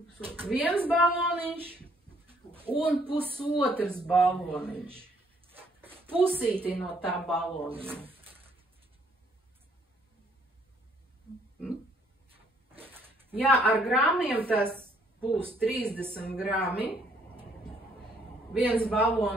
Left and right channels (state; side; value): normal; both; correlation 0.65